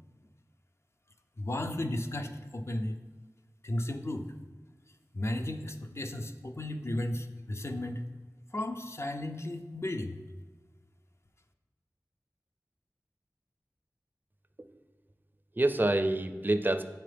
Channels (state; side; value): normal; both; correlation 0.90